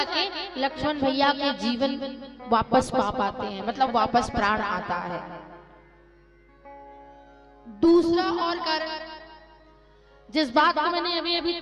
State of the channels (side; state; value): both; identical; correlation 1.00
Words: लक्ष्मण भैया के जीवन वापस पा पाते हैं, मतलब वापस प्राण आता है। दूसरा और कारण जिस बात को मैंने अभी अभी